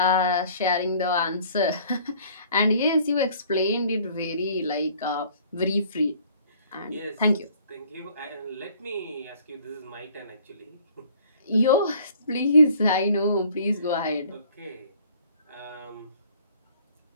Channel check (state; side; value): inverted; both; correlation -0.55